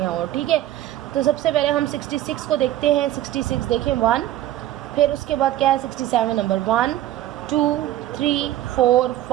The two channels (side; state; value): left; quieter; 13.7 dB